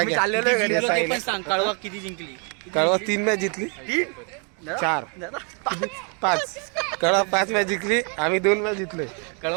घ्या. याचा आहे ना. सांग कळवा किती जिंकली. कळवा 3 मॅच जिंकली. 4 5 कळवा 5 मॅच जिंकली. आम्ही 2 मॅच जिंकलोय.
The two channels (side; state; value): left; quieter; 37.2 dB